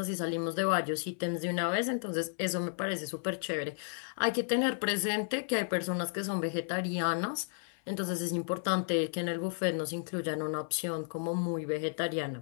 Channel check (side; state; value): right; silent; 56 dB below the other